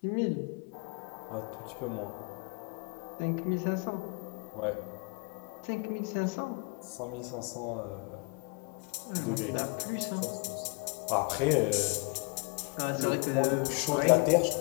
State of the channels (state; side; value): quieter; right; 30.7 dB